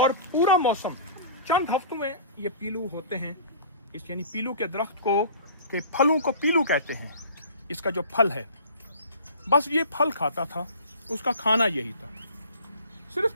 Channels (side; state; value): both; inverted; correlation -0.43